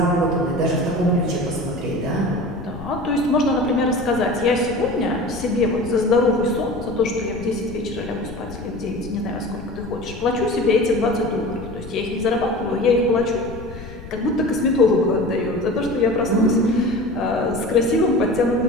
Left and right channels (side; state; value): left; noise; rumble, 14 dB below the sound